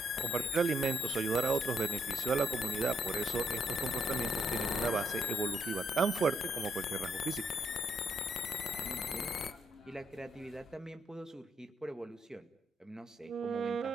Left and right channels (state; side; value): normal; both; correlation 0.75